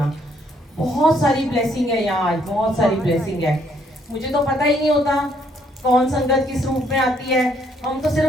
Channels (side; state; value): both; normal; correlation 0.68